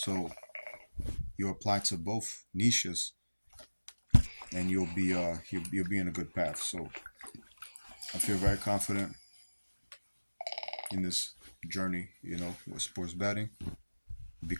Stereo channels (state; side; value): inverted; both; correlation -1.00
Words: you apply to both niches, and you'll be in a good path. So I feel very confident in this journey, with sports betting